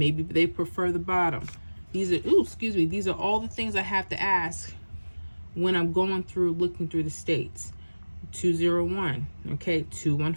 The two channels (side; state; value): both; inverted; correlation -1.00